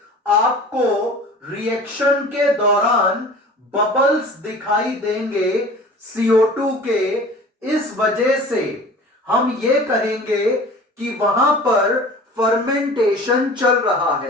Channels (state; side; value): normal; both; correlation 0.42